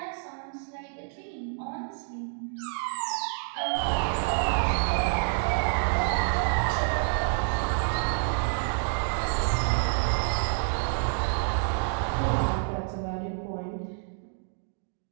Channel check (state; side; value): silent; left; 59 dB below the other